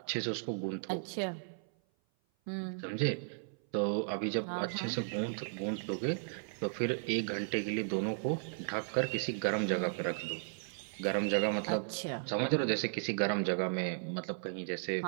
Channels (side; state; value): left; silent; 54 dB below the other